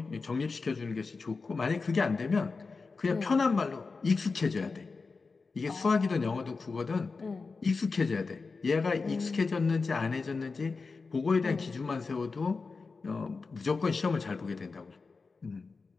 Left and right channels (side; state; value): right; quieter; 4.3 dB